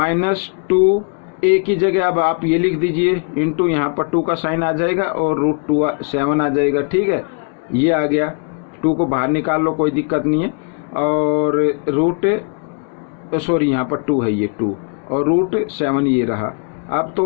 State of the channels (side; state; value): right; quieter; 39.6 dB